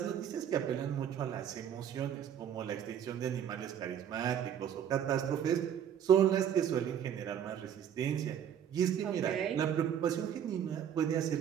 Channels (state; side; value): quieter; left; 9.1 dB